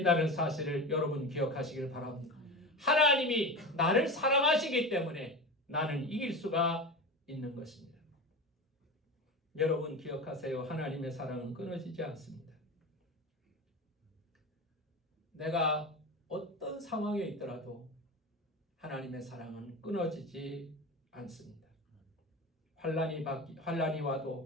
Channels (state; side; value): normal; both; correlation 0.27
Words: 사실을 여러분 기억하시길 바랍니다. 하나님이 나를 사랑하시기 때문에 나는 이길 수가 있는 것입니다. 여러분 기억하세요. 하나님의 사랑은 끊어지지 않습니다. 내가 어떤 상황에 있더라도 하나님의 사랑은 끊어지지 않습니다. 환란이